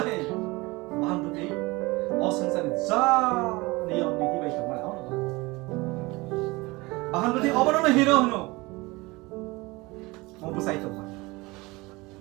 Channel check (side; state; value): left; quieter; 23.2 dB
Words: 바한 버티 어슴사는 자 Leon ni tiba itu mana orang? Bahan berarti apa nama hero no? Mau busai itu mana?